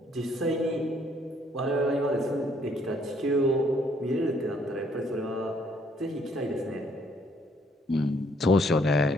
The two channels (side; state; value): both; normal; correlation 0.66